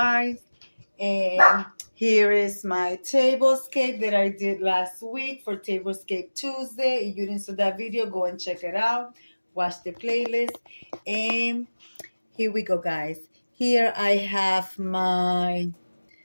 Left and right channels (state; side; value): inverted; both; correlation -1.00